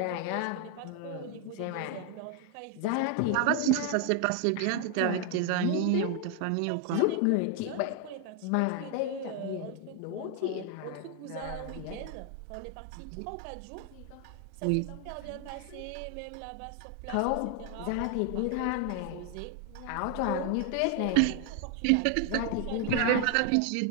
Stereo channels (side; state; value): both; different; correlation 0.01